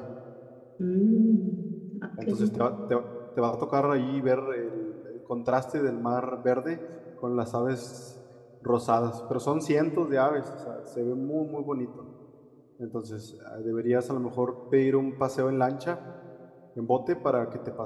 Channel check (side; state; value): both; identical; correlation 1.00